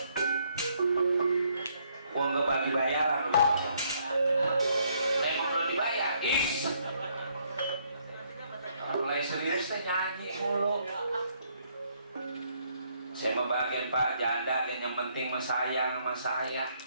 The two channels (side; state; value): both; inverted; correlation -0.69